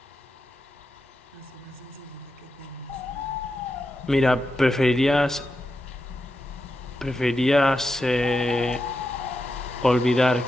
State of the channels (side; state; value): both; normal; correlation 0.88